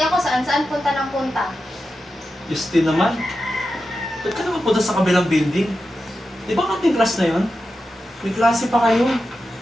ako saan-saan punta ng punta. Justine naman. Ba't ka naman punta sa kabilang building? Di ba kating class na yun? May klase pa kayo.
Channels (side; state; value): both; normal; correlation 0.91